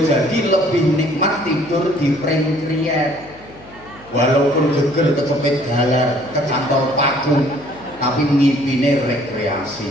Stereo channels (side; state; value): left; noise; hum, 23 dB below the sound